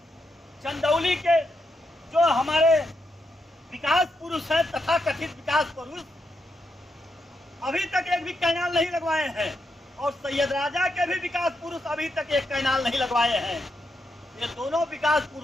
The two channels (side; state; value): both; normal; correlation 0.82